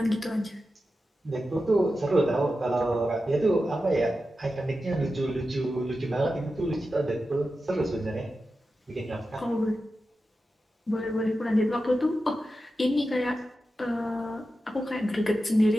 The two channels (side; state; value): both; normal; correlation 0.91